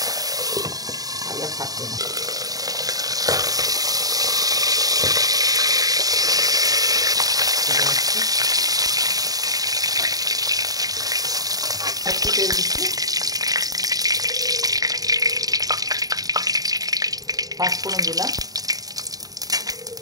তাহলে থাকবে না। একটু তেল দিচ্ছি, 5 ফোড়ন দিলাম,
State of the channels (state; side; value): late; left; 0.18 ms